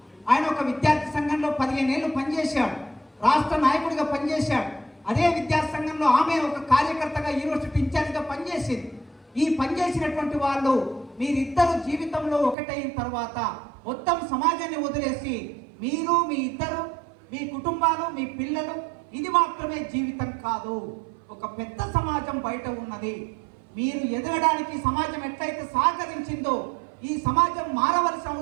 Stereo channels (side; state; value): left; drops out; at 12.6 s